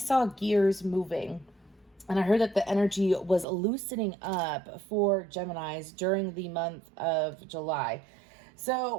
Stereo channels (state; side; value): drops out; left; at 3.5 s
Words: gears moving. And I heard that the energy was loosening up for Geminis during the month of July. So